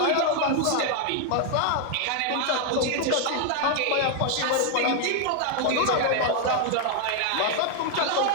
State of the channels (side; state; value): both; different; correlation 0.01